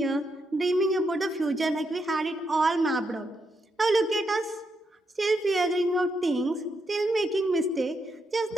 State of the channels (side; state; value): both; normal; correlation 0.81